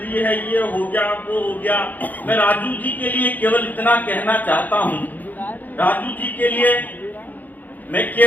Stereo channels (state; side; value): late; right; 0.084 ms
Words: है, ये हो गया वो हो गया। मैं राजू जी के लिए केवल इतना कहना चाहता हूँ, राजू जी के लिए मैं